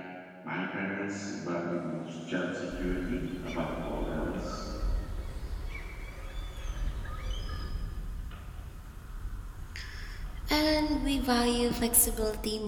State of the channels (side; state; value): both; identical; correlation 1.00